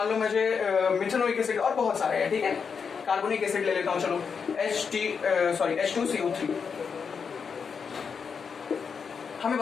लो मुझे मिथेनोइक एसिड, और बहुत सारे हैं, ठीक है। कार्बोनिक एसिड ले लेता हूं, चलो H2CO3। हमें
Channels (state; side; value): quieter; right; 6.0 dB